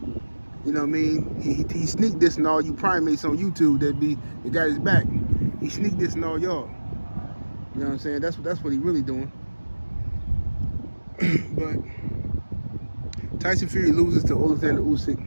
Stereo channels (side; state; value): both; inverted; correlation -1.00